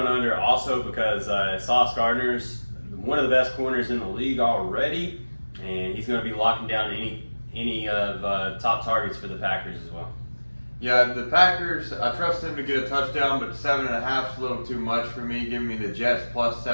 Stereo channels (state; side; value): inverted; both; correlation -1.00